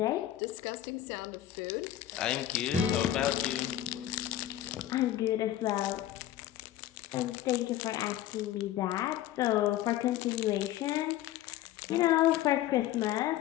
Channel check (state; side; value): quieter; right; 13.0 dB